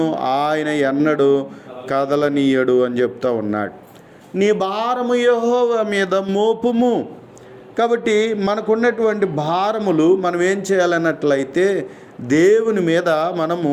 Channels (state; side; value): identical; both; correlation 1.00